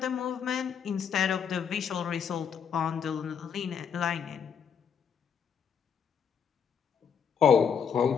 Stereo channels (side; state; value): right; quieter; 7.3 dB